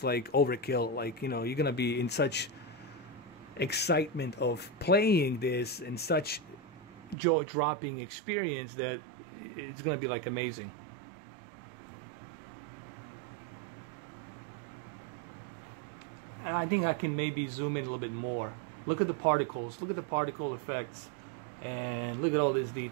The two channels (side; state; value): left; drops out; at 7.2 s